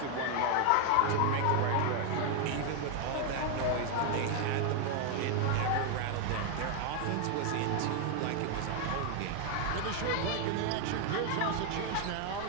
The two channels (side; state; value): both; different; correlation 0.01